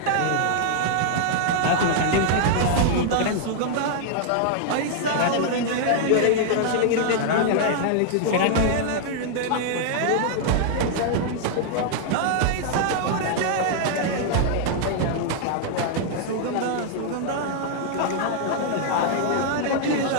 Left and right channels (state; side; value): different; both; correlation -0.01